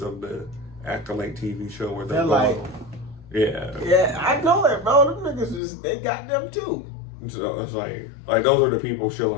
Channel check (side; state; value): right; drops out; at 5.6 s